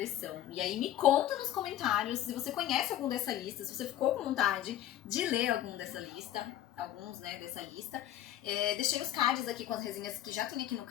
E aí me conta nos comentários se você conhece algum dessa lista, se você ficou com vontade de ler alguns, né, dessa lista. Deixei os cards aqui com as resenhas que já tem aqui no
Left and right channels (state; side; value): quieter; right; 12.4 dB